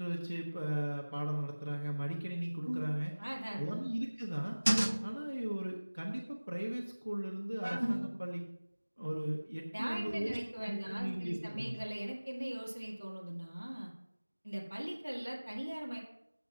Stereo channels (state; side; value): inverted; both; correlation -1.00